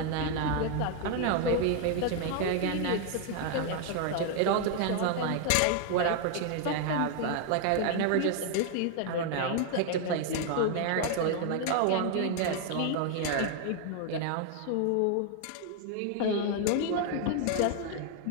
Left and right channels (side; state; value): both; different; correlation 0.00